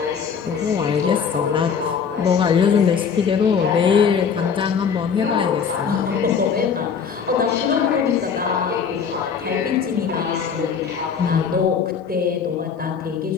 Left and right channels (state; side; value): quieter; right; 6.6 dB